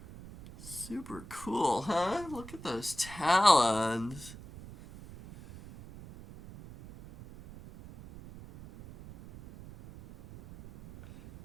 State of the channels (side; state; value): right; noise; rumble, 16 dB below the sound